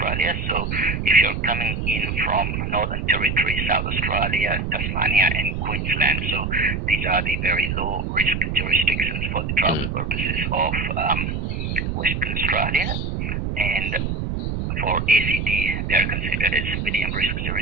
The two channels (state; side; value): noise; right; rumble, 2 dB below the sound